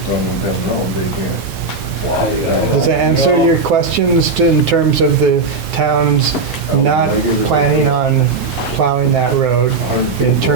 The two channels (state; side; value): quieter; left; 4.2 dB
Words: road, they can't. does that answer your questions in terms of the town's not planning on plowing that road. In